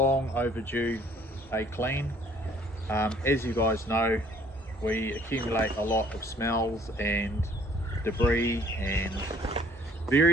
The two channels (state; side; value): normal; both; correlation 0.58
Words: overdue a clean. As you guys know, we accumulate a lot of smells and debris and